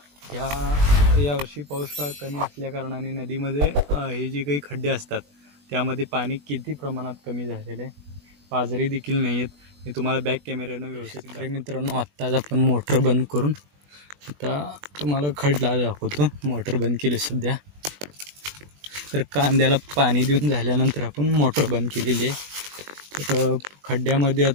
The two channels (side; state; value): left; late; 20 ms